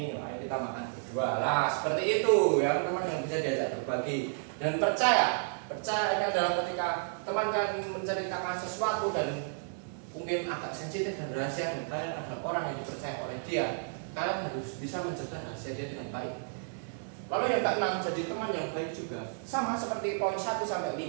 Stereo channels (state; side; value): silent; left; digital silence